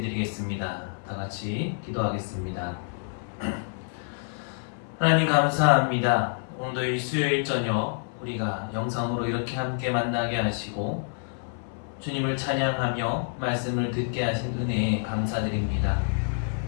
드리겠습니다. 다 같이 기도하겠습니다. 하나님 감사합니다. 오늘도 이 수요일 저녁 우리가 영상으로 이렇게 함께 만나게 하시고 주님을 찬양하며 말씀을 듣게 하신 은혜에 감사드립니다.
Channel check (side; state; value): right; silent; 60 dB below the other